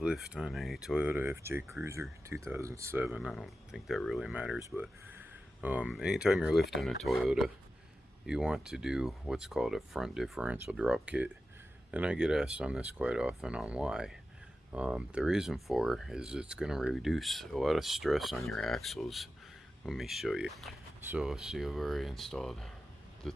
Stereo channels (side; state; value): both; normal; correlation 0.93